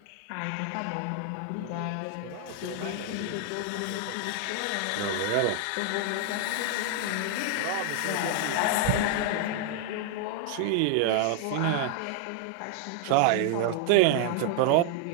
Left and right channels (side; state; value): both; different; correlation 0.00